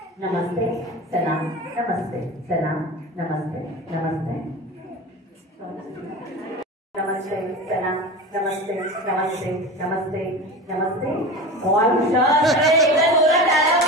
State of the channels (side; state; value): both; normal; correlation 0.30